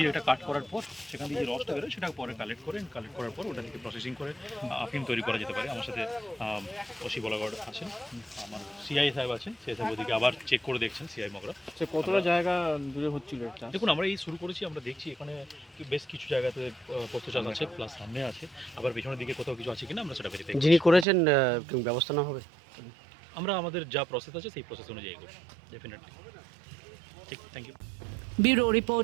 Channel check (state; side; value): drops out; left; at 21.1 s